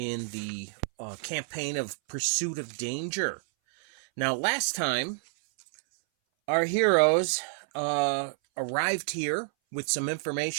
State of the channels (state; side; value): silent; left; 59 dB below the other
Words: the campaign of Pursuit of Danger. Now, last time, our heroes arrived here with some